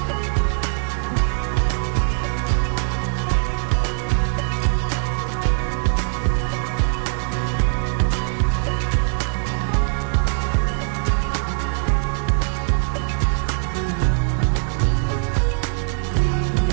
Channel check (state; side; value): silent; left; 65 dB below the other